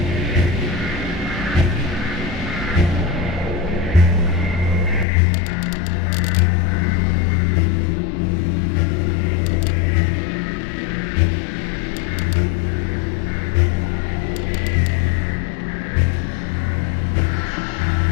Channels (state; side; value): drops out; right; at 5.1 s